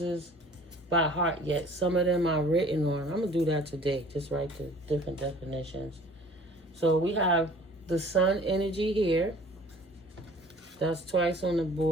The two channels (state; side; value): normal; both; correlation 0.50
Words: by heart yet. Some of them are written on. I'm going to do that today. Just write the different definitions. So we have the sun energy here. That's twice on the